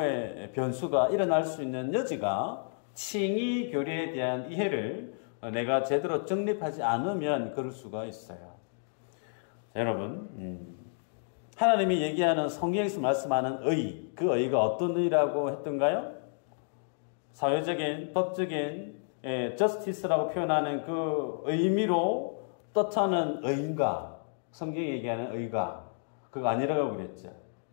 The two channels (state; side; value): silent; right; digital silence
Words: 변수가 일어날 수 있는 여지가 칭의 교리에 대한 이해를 내가 제대로 정립하지 않으면 그럴 수가 있어요. 자, 여러분 하나님이 얘기하는 성경에서 말씀하는 의, 그 의가 어떤 의라고 했던가요? 사회적인, 법적인 justice라고 표현하는 그 의미로 뜻하는 의인가, 성경이 얘기하는 의가, 그거 아니라고 그랬죠.